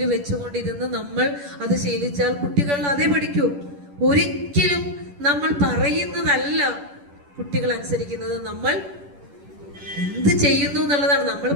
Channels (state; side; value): late; left; 10 ms